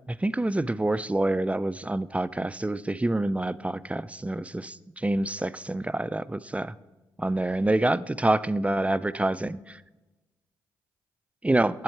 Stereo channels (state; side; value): normal; both; correlation 0.95